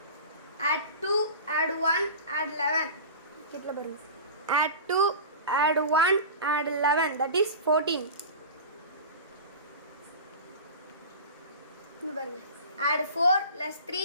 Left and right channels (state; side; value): inverted; both; correlation -0.34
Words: Add 2, add 1, add 11. கிட்டல பாருங்க. Add 2, add 1, add 11. That is 14. இங்க பாருங்க. Add 4 plus